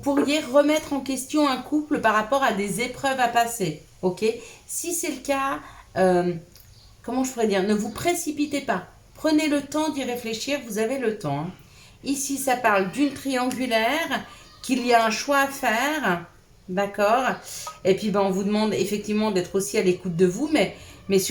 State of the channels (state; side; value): identical; both; correlation 1.00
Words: remettre en question un couple par rapport à des épreuves à passer, ok? Si c'est le cas, comment je pourrais dire? Ne vous précipitez pas. Prenez le temps d'y réfléchir, vous avez le temps, hein. Ici, ça parle d'une triangulaire, qu'il y a un choix à faire, d'accord? Et puis, on vous demande effectivement d'être aussi à l'écoute de vous, mais